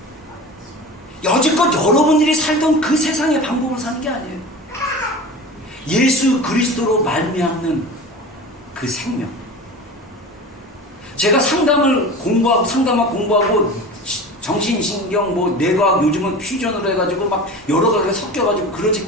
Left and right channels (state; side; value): normal; both; correlation 0.34